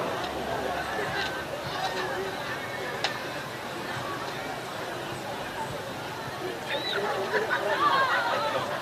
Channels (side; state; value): both; identical; correlation 1.00